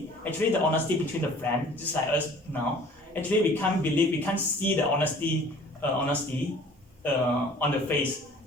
Actually, the honesty between the friends, just like us now. Actually, we can't see the honesty on the face.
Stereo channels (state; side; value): normal; both; correlation 0.50